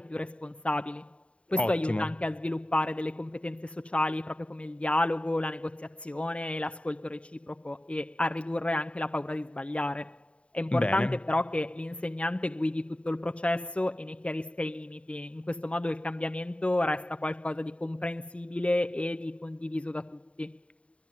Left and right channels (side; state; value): right; late; 0.061 ms